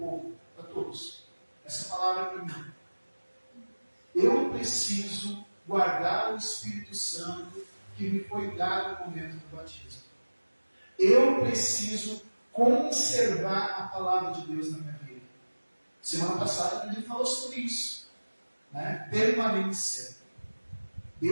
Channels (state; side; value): inverted; both; correlation -1.00